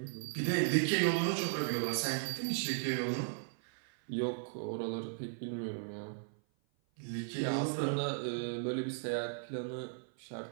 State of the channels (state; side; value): silent; left; 54 dB below the other